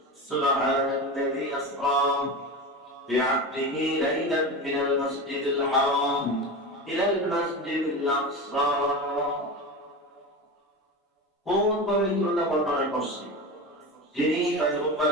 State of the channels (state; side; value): normal; both; correlation 0.25